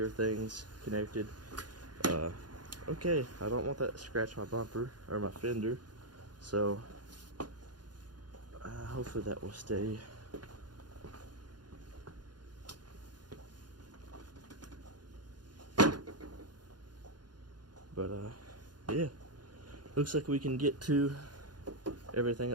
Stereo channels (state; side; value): late; left; 0.70 ms